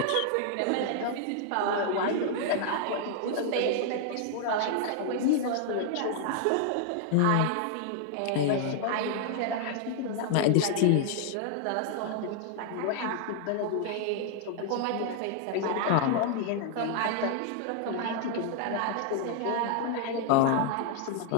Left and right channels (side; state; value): both; different; correlation 0.00